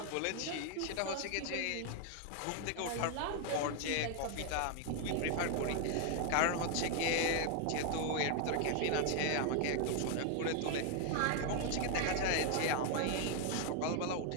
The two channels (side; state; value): both; different; correlation 0.00